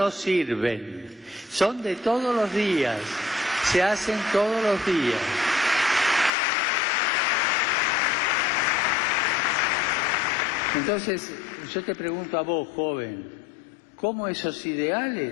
sirven. Son de todos los días, se hacen todos los días. Entonces, yo te pregunto a vos, joven, ¿cómo esos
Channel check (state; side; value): drops out; right; at 6.3 s